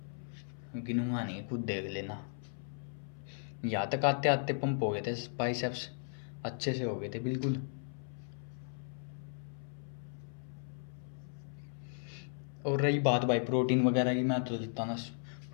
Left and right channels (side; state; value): right; silent; 54 dB below the other